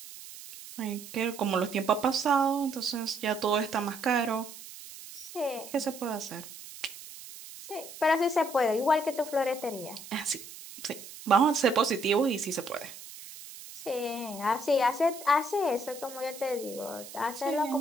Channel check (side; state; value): right; noise; hiss, 15 dB below the sound